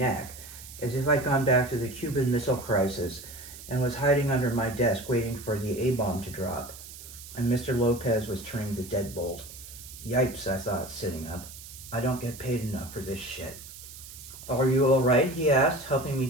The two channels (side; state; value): right; noise; hiss, 15 dB below the sound